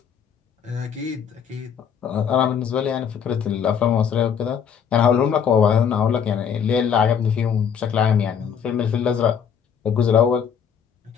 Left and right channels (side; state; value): right; quieter; 7.6 dB